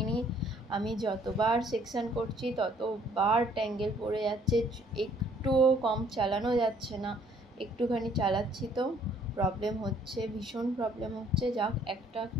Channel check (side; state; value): both; normal; correlation 0.61